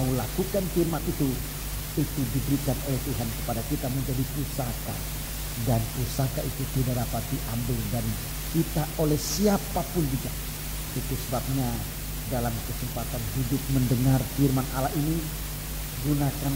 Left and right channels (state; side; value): identical; both; correlation 1.00